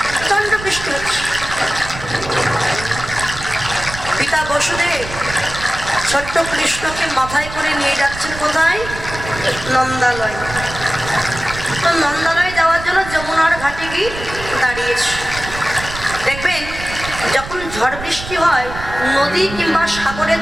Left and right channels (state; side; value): noise; right; rumble, 11 dB below the sound